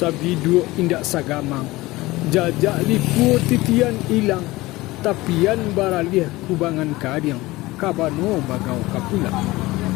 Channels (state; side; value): quieter; right; 19.8 dB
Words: dua indak sagamang, jajak liku titian ilang, tapian baraliah kubangan kadiang, kabano bagau kapulang.